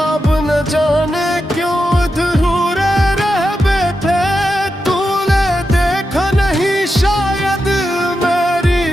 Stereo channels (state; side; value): normal; both; correlation 0.88